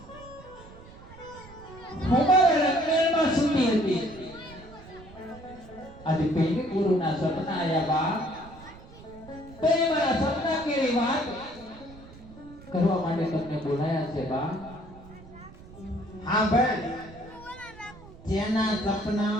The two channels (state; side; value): noise; right; rumble, 19 dB below the sound